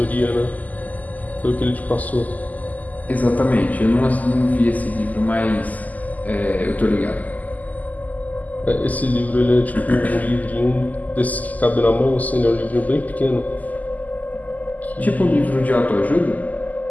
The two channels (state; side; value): late; right; 0.079 ms